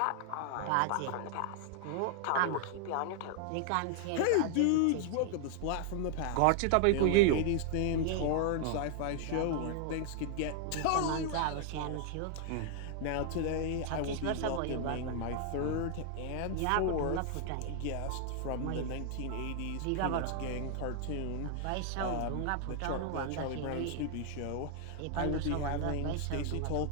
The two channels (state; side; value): different; both; correlation 0.00